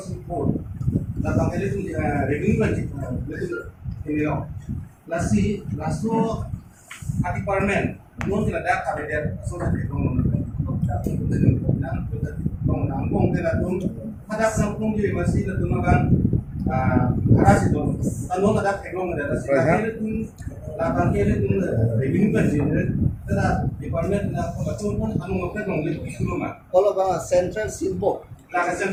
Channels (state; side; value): identical; both; correlation 1.00